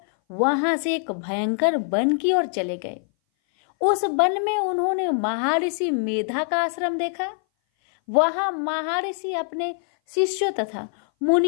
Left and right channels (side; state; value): right; silent; 59 dB below the other